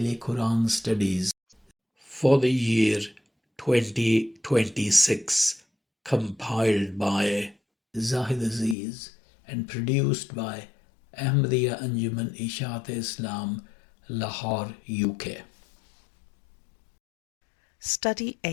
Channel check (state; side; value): drops out; right; at 8.8 s